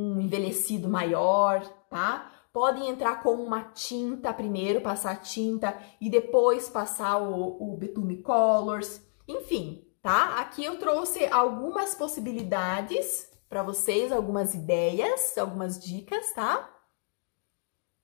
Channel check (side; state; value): right; silent; digital silence